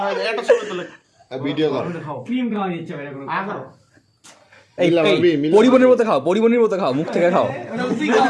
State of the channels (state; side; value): identical; both; correlation 1.00